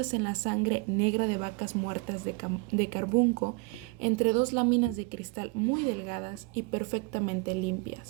en la sangre negra de vacas muertas de carbunco entre dos láminas de cristal muy delgadas y perfectamente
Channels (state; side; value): quieter; left; 26.0 dB